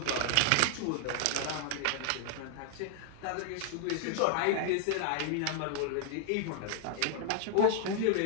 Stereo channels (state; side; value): different; both; correlation 0.00